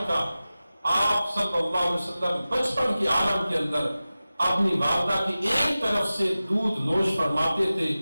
تھا۔ آپ صلی اللہ علیہ وسلم بچپن کے عالم کے اندر اپنی والدہ کی ایک طرف سے دودھ نوش فرماتے تھے،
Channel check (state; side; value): inverted; both; correlation -0.96